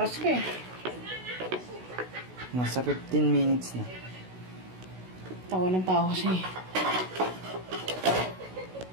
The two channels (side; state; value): left; late; 16 ms